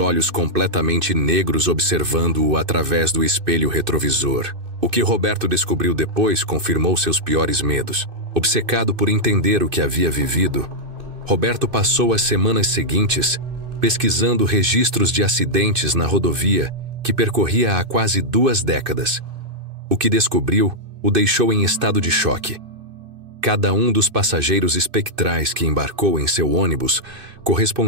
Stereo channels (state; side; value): late; left; 2.6 ms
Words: completamente negros observando-o através do espelho retrovisor. O que Roberto descobriu depois confirmou seus piores medos. Obcecado por entender o que havia vivido, Roberto passou as semanas seguintes pesquisando registros de acidentes na rodovia que percorria há quase 2 décadas. O que descobriu o deixou em estado de choque. Cada um dos passageiros espectrais que embarcou em seu ônibus